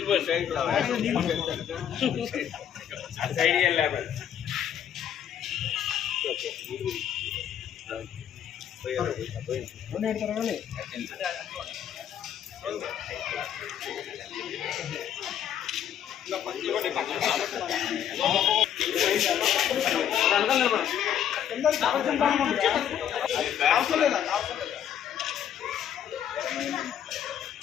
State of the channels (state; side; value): quieter; right; 9.6 dB